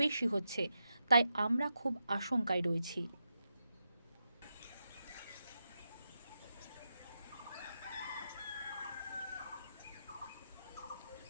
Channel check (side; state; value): both; inverted; correlation -0.87